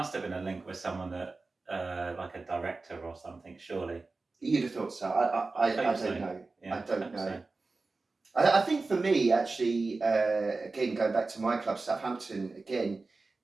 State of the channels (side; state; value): left; quieter; 3.7 dB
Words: have been a link with someone that like a director or something, surely. You'd have thought so. I don't know. Yeah, I don't know. So. I think for me, actually, again, going back to my club, Southampton, again,